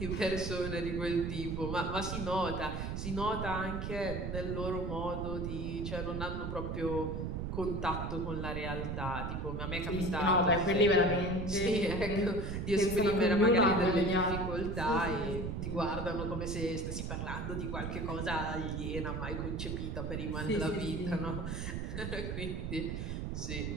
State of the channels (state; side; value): noise; right; rumble, 3 dB below the sound